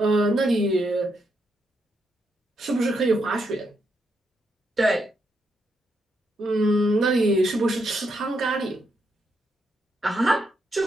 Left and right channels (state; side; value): normal; both; correlation 0.79